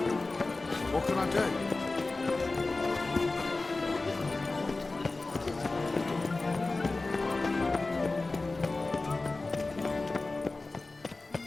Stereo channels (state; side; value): quieter; right; 3.4 dB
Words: What can I do?